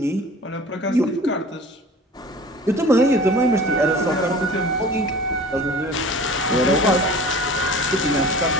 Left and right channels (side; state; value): both; normal; correlation 0.42